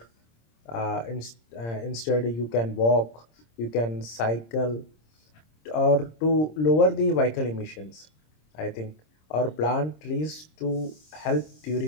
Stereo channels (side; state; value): right; late; 26 ms